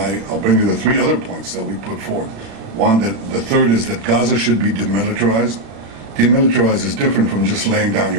bring you the 3 other points that we put forward. One, the third is that Gaza should be demilitarized. Demilitarized is different from just laying down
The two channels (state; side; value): late; left; 36 ms